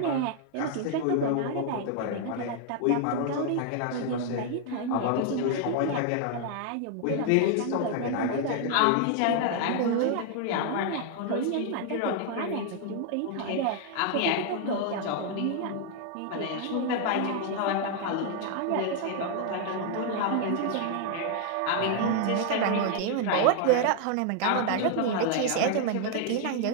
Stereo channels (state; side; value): different; both; correlation 0.00